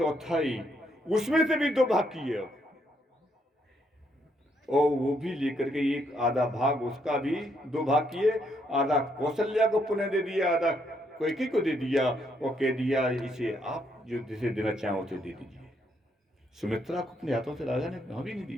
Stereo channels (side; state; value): both; normal; correlation 0.74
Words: उसमें से भी 2 भाग किए, और वो भी लेकर के एक आधा भाग उसका भी 2 भाग किए, आधा कौशल्या को पुनः दे दिया, आधा कैकेयी को दे दिया, और कह दिया इसे आप जो जिसे देना चाहो उसे दे दीजिए। सुमित्रा को अपने हाथों से राजा ने कहा भी नहीं